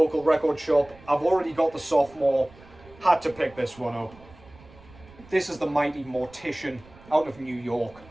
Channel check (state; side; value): noise; right; rumble, 23 dB below the sound